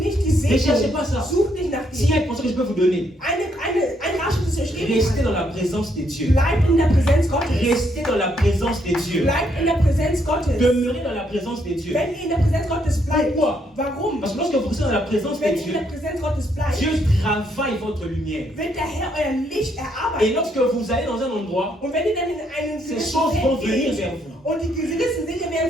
die Ne cherchez Segnung. pas ça. Such nicht nach S'il y a dir. une pensée que je peux vous donner, Ein Ratschlag, das ich euch geben restez kann. dans la présence de Dieu. Bleib in der Präsenz Gottes. Restez dans la présence de Dieu. Bleib in der Präsenz Gottes. Demeurez dans la présence de Dieu. Wenn ihr in der Präsenz Gottes bleibt, Pourquoi? warum? Parce que lorsque vous restez dans la présence de Wenn ihr in Dieu, der Präsenz Gottes bleibt, Dieu travaille votre lumière. wird der Herr euer Licht Et erarbeiten. lorsque vous allez dans un endroit, Und wenn ihr dann in einen ces gewissen choses vont Feld venir geht vers vous. und die gewissen Dinge werden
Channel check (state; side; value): normal; both; correlation 0.73